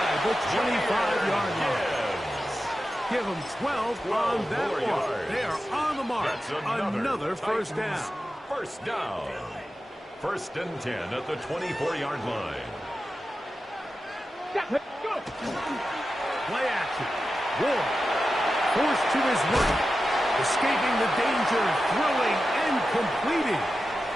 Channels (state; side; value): normal; both; correlation 0.92